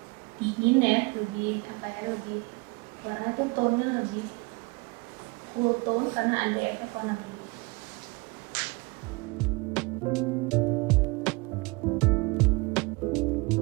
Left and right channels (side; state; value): left; quieter; 26.5 dB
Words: dingin ya, lebih lebih warna itu tone-nya lebih cool tone karena ada efek warna biru.